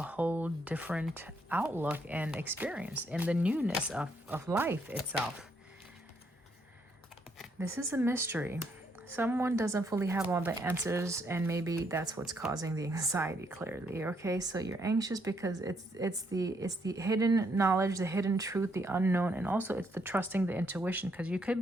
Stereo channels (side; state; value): both; normal; correlation 0.73